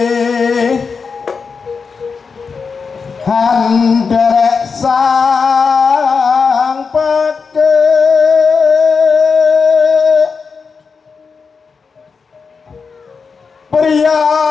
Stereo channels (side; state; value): right; quieter; 5.2 dB